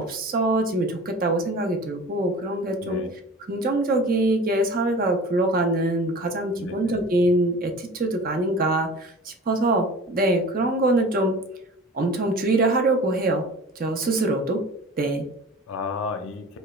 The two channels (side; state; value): both; normal; correlation 0.40